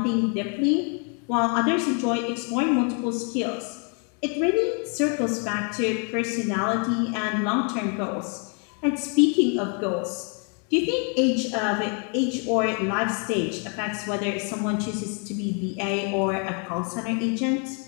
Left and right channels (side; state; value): right; quieter; 38.7 dB